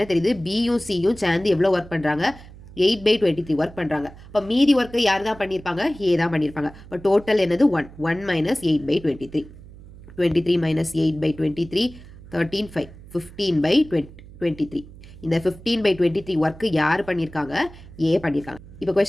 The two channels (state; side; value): noise; right; hum, 19 dB below the sound